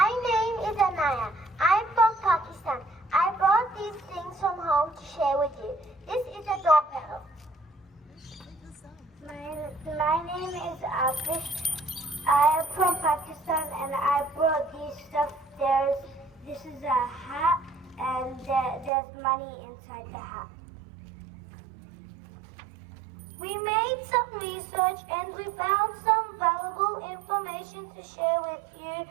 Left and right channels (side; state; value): left; drops out; at 18.9 s